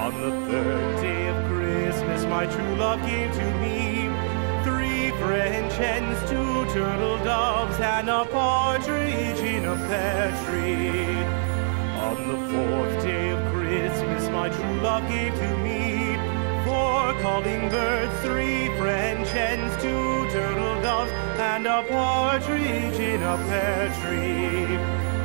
On the third day of Christmas, my true love gave to me three French hens, two turtle doves, and a partridge in a pear tree. On the fourth day of Christmas, my true love gave to me four calling birds, three French hens, two turtle doves, and a partridge in a pear tree.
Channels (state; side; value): silent; left; 62 dB below the other